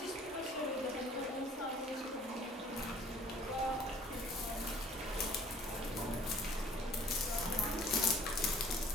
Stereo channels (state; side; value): normal; both; correlation 0.53